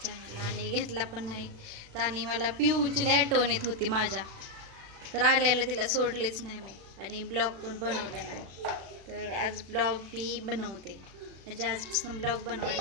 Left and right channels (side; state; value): left; late; 36 ms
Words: चॅनलला आणि घेतला पण नाही. तर आणि मला पिऊची लय आठवण येत होती माझ्या, तर आल्याला तिला सोडलेच नाही मी आणि ब्लॉग पण बनवले नाही. तर आज ब्लॉग मी बनवते, म्हणजे आजपासून ब्लॉग